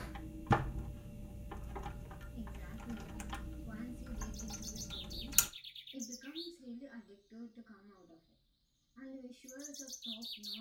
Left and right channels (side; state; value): both; identical; correlation 1.00